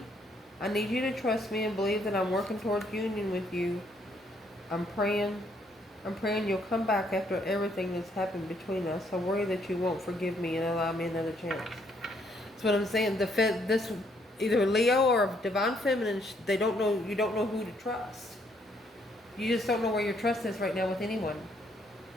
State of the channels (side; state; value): both; normal; correlation 0.70